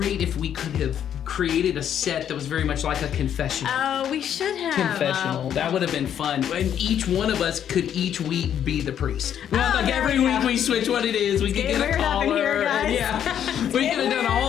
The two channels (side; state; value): right; quieter; 9.5 dB